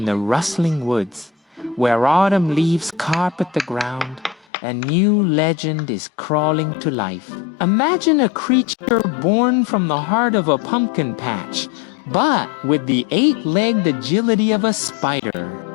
the rustling woods, where autumn leaves carpet the ground. A new legend is crawling to life. Imagine a creature born from the heart of a pumpkin patch, but with the 8-legged agility of a spider.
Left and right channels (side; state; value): right; drops out; at 4.5 s